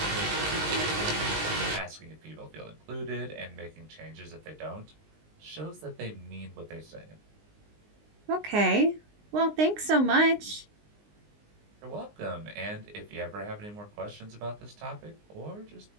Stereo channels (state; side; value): late; left; 19 ms